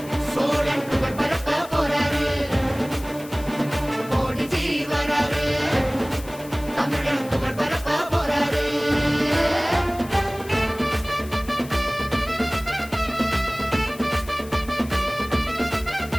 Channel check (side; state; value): left; noise; hiss, 18 dB below the sound